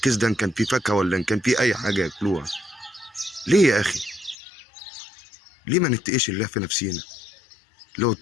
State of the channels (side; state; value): right; drops out; at 4.4 s